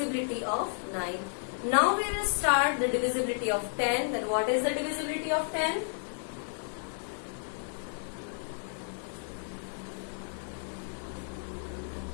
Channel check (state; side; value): silent; right; digital silence